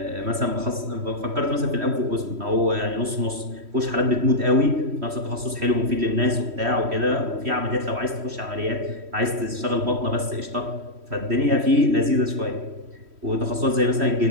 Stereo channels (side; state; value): left; late; 3.1 ms